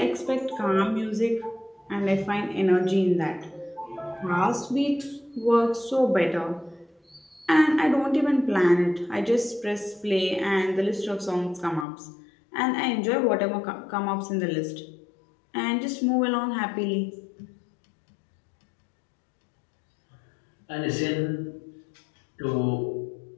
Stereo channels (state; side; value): drops out; right; at 11.9 s